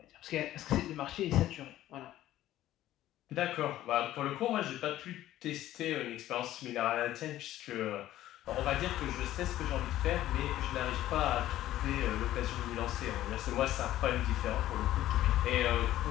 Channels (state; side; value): quieter; right; 13.9 dB